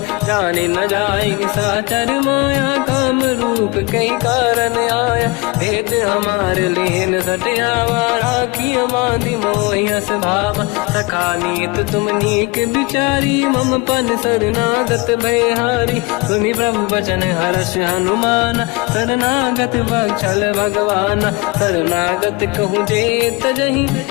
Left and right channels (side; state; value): right; quieter; 25.6 dB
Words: जाने न जाएगी साचर माया काम रूप कई कारण आया भेद हमार लेन सटियावा राखी मांदी मोहियस भावा सखा नीत तुम नीक बिचारी मम पन शरणागत भयहारी सुनि प्रभु वचन हर्ष हनुमान शरणागत वत्सल भगवान शरणागत कहूँ जे तजहि